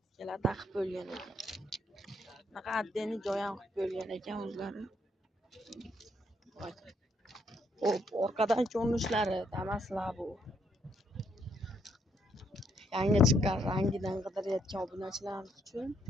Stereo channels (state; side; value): normal; both; correlation 0.73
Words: ikkala taqib bo'lgan ekan. Bunaqa addeni joy ham qilib bo'lgan ekan o'zlari. Xo'p, orqadan ko'rinishlari Damas Labo. Yangi chiqqan rangidan qidirayotgan obunachilarimiz uchun